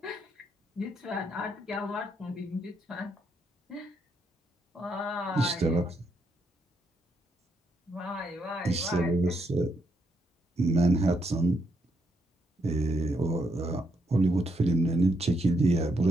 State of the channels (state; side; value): normal; both; correlation 0.77